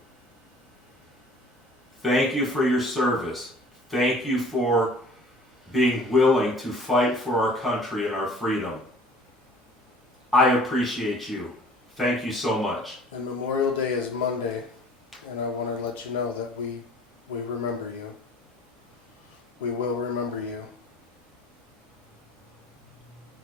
Thank you for your service. Thank you for being willing to fight for our country and our freedom. I appreciate you. Thank you so much. And Memorial Day is Monday, and I want to let you know that we remember you. We will remember you.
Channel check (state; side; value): normal; both; correlation 0.50